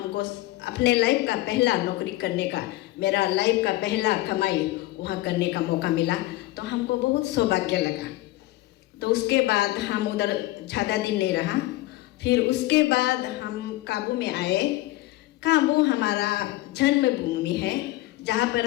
अपने लाइफ का पहला नौकरी करने का, मेरा लाइफ का पहला कमाई वहाँ करने का मौका मिला। तो हमको बहुत सौभाग्य लगा। तो उसके बाद हम उधर ज़्यादा दिन नहीं रहा। फिर उसके बाद हम काबू में आए। काबू हमारा जन्मभूमि है, जहाँ पर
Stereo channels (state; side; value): quieter; right; 17.6 dB